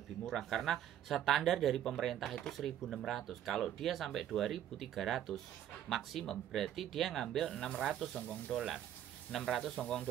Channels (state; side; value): quieter; left; 10.9 dB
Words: murah. Karena standar dari pemerintah itu 1.600. Kalau dia sampai 2.300 maksimum, berarti dia ngambil 600 Hong Kong dolar. 600 Hong Kong